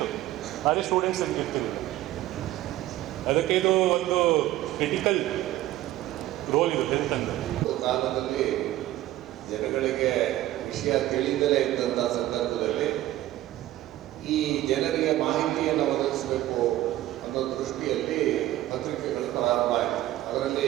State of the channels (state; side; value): quieter; left; 14.8 dB